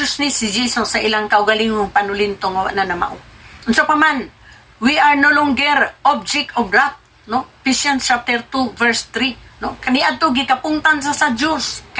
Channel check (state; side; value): identical; both; correlation 1.00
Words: si Jesus sa ilang kaugalingong panulintong na namao. Unsa pa man, we are no longer object of wrath, no? Ephesians chapter 2 verse 3, no? Kaniadto gikapungtan sa Dios